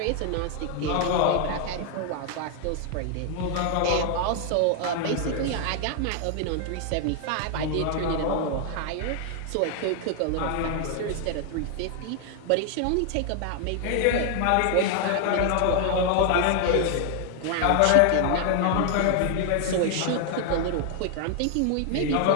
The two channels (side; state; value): both; different; correlation 0.00